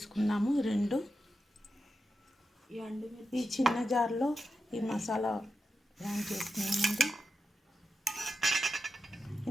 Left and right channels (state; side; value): normal; both; correlation 0.89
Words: 2 ఈ చిన్న జార్లో ఈ మసాలా గ్రైండ్ చేసుకున్నామండి.